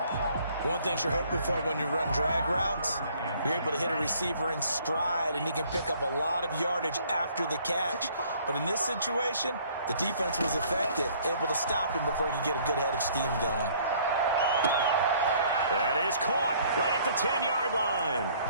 One thing you're hoping for when you run drag routes, you're able to hit a receiver in stride, and he can pick up a lot of yardage after the catch. But in this situation, the defense was effective, able to stop him before he could get a good head of steam going. That is caught right at the 10-yard line.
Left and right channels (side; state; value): both; inverted; correlation -0.59